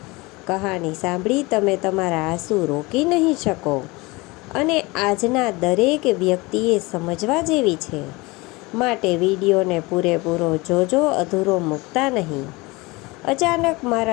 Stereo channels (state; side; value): quieter; right; 23.8 dB